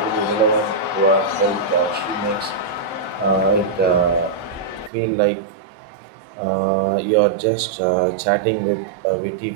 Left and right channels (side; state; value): left; drops out; at 4.9 s